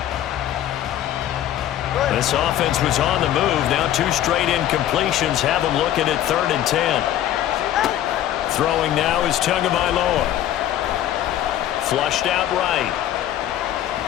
This offense was on the move. Now 2 straight incompletions have them looking at 3rd and 10. Throwing now is Tagovailoa. Flushed out right.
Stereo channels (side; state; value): right; quieter; 12.0 dB